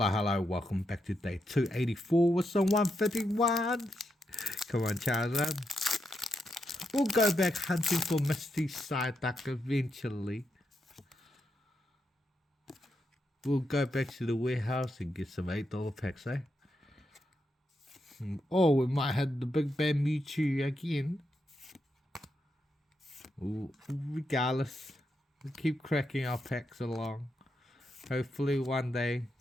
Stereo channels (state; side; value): normal; both; correlation 0.83